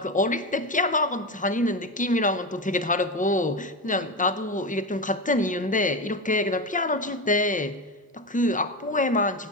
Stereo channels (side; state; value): both; normal; correlation 0.18